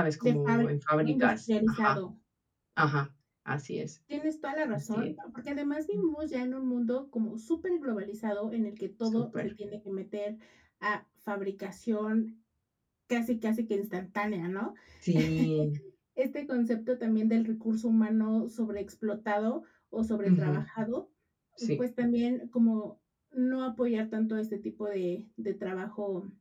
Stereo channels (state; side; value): identical; both; correlation 1.00